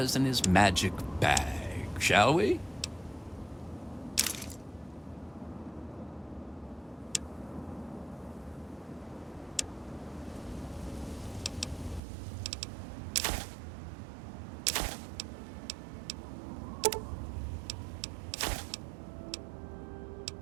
in his magic bag, shall we?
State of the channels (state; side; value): drops out; left; at 12.0 s